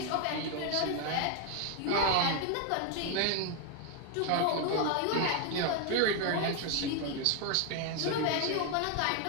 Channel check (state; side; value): different; both; correlation 0.01